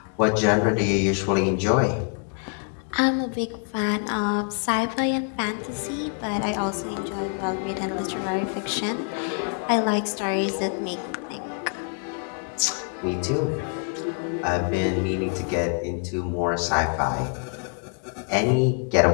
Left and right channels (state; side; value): quieter; right; 39.2 dB